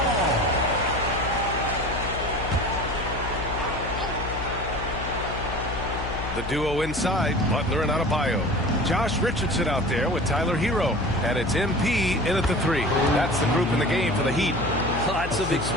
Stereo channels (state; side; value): noise; left; hum, 7 dB below the sound